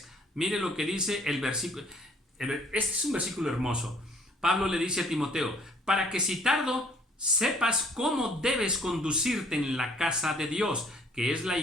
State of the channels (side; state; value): both; normal; correlation 0.59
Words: Mire lo que dice el versículo. Este es un versículo hermoso. Pablo le dice a Timoteo, para que si tardo, sepas cómo debes conducirte en la casa de Dios, que es la